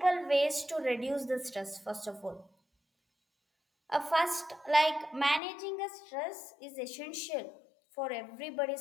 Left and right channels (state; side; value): drops out; right; at 5.4 s